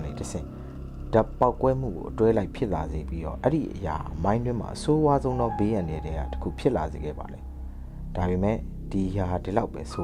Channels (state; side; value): identical; both; correlation 1.00